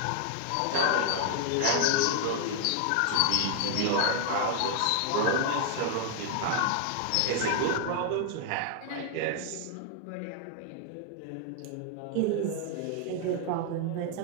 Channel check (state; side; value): different; both; correlation 0.00